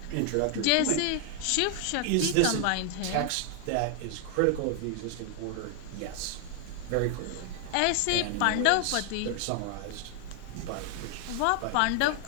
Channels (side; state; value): both; different; correlation 0.00